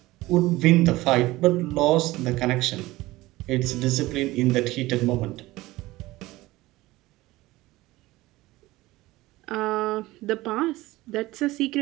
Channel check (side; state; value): left; quieter; 18.7 dB